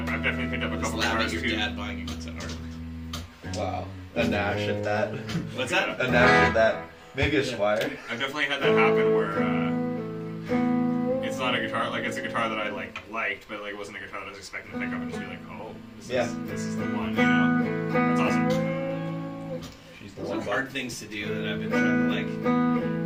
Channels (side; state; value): both; identical; correlation 1.00